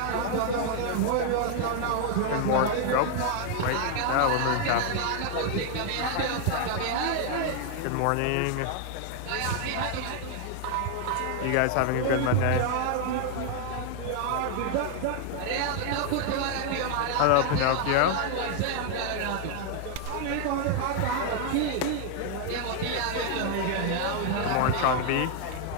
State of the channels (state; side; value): different; both; correlation 0.00